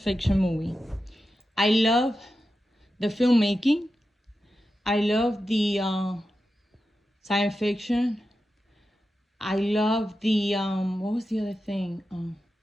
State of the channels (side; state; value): both; normal; correlation 0.91